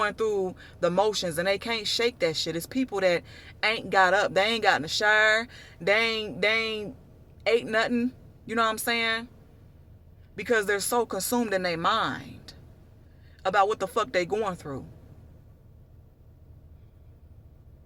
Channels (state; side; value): identical; both; correlation 1.00